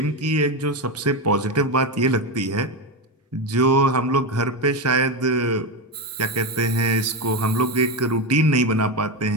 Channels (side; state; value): both; normal; correlation 0.14